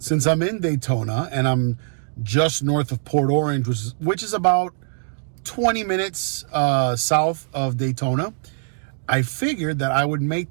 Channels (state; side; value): silent; left; 64 dB below the other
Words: I'm in Daytona and I'm just north of Port Orange, which is about 20 minutes south of Daytona, I figured that I would